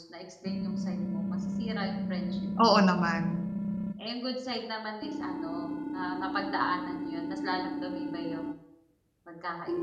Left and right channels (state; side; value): identical; both; correlation 1.00